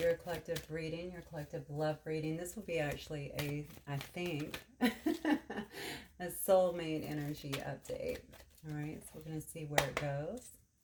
collective reading, your collective love reading. This will be actually I think, a soulmate energy update. All right, so we're going to see where it goes.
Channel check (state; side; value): identical; both; correlation 1.00